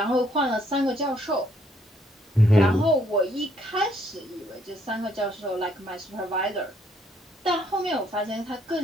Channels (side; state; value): both; normal; correlation 0.69